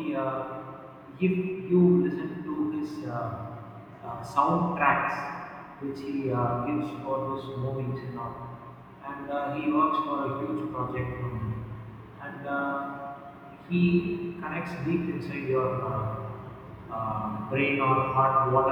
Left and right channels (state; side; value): identical; both; correlation 1.00